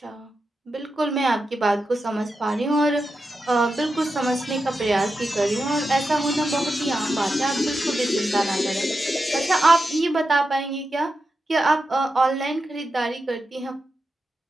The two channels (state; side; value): normal; both; correlation 0.89